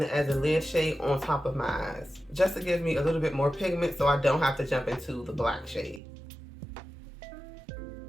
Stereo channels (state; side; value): drops out; left; at 6.0 s